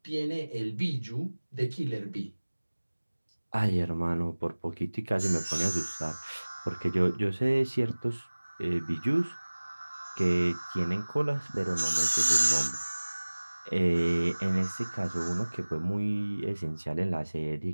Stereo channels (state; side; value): inverted; both; correlation -1.00